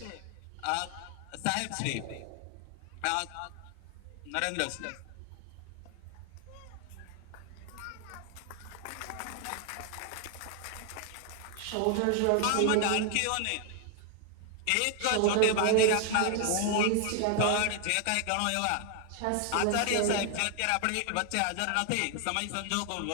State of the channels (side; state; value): both; different; correlation 0.00